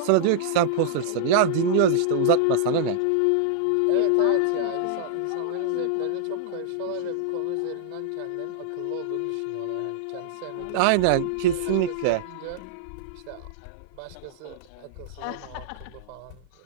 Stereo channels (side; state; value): both; different; correlation -0.01